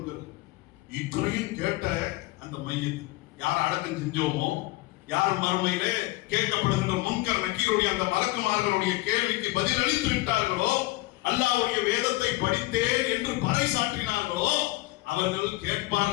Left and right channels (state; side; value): quieter; right; 20.5 dB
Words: இத்தனையும் கேட்ட அந்த மையத் யார் அடக்கம் செஞ்சோமோ, யார் மறுமையிலே கேட்கப்படுகின்ற முன்கர் நக்கீருடைய அந்த மலக்குமார்களுடைய கேள்விக்கு பதில் அளித்து விட்டார்களோ, அல்லாஹ்வுடைய வேதத்தை படித்தேன் என்று பறைசாற்றினார்களோ, அவர்கள்